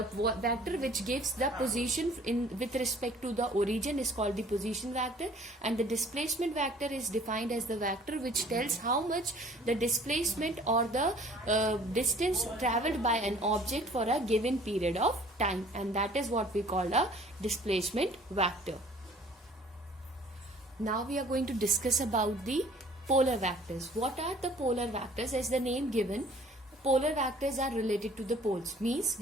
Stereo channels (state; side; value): normal; both; correlation 0.53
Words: vector which gives the position with respect to the origin is called the position vector, and the displacement vector is defined as the vector which tells how much the displacement or the distance traveled by an object for a given period of time, and that is what we call a displacement vector. Now we are going to discuss about the polar vectors. What are the polar vectors? As the name given, polar vectors are related to the poles. Means